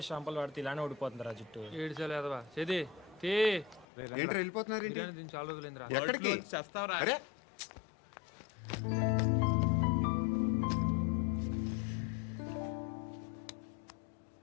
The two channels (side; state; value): right; drops out; at 3.9 s